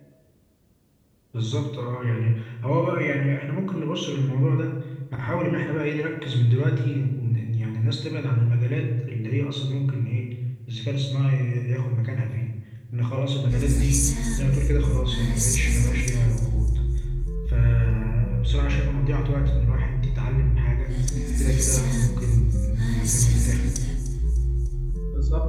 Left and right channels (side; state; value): both; identical; correlation 1.00